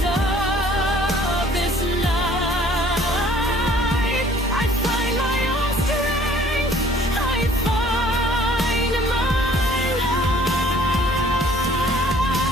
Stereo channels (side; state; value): both; normal; correlation 0.55